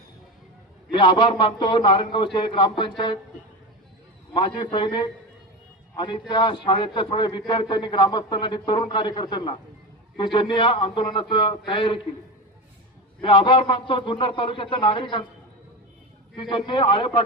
मी आभार मानतो नारायणगावचे ग्रामपंचायत माजी सैनिक आणि त्या शाळेच्या थोड्या विद्यार्थ्यांनी, ग्रामस्थांना आणि तरुण कार्यकर्त्यांना की ज्यांनी या आंदोलनाची तयारी केली। मी आभार मानतो जुन्नर तालुक्याच्या नागरिकांचे की ज्यांनी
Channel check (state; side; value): normal; both; correlation 0.22